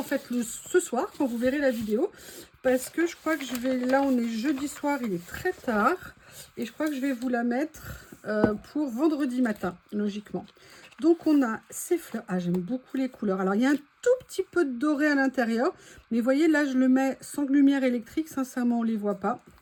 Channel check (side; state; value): both; identical; correlation 1.00